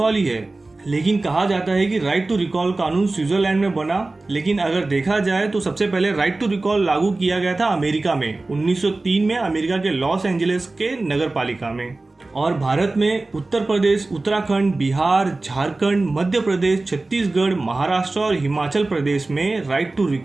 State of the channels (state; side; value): quieter; left; 3.2 dB